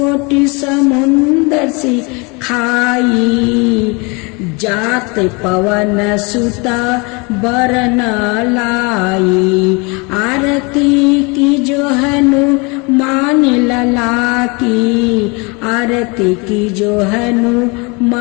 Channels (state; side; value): quieter; right; 29.3 dB